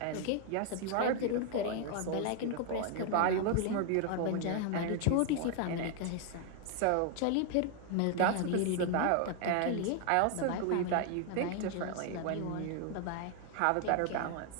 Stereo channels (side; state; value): both; different; correlation 0.00